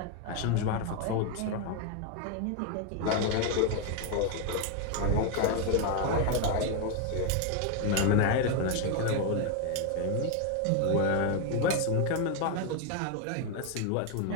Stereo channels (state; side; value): different; both; correlation 0.01